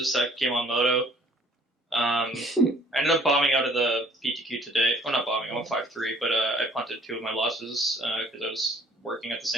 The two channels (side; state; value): both; normal; correlation 0.57